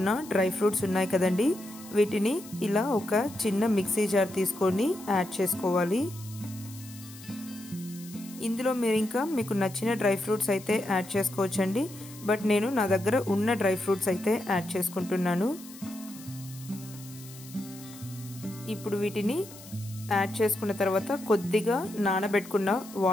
డ్రై ఫ్రూట్స్ ఉన్నాయి కదండి, వీటిని ఇలా ఒక చిన్న మిక్సీ జార్ తీసుకొని యాడ్ చేసుకోవాలి. ఇందులో మీరు ఇంకా మీకు నచ్చిన డ్రై ఫ్రూట్స్ అయితే యాడ్ చేసుకోవచ్చండి. బట్ నేను నా దగ్గర ఉన్న డ్రై ఫ్రూట్స్ అయితే యాడ్ చేసుకుంటున్నాను. ఇప్పుడు వీటిని యాడ్ చేసుకున్న తర్వాత కొద్దిగా నానబెట్టుకున్న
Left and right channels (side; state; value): left; noise; hiss, 18 dB below the sound